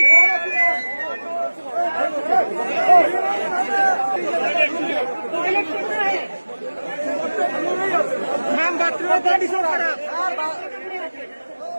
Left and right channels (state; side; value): inverted; both; correlation -1.00